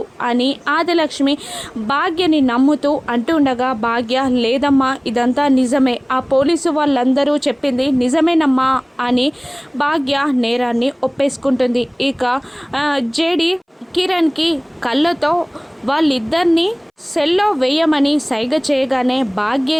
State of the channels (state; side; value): identical; both; correlation 1.00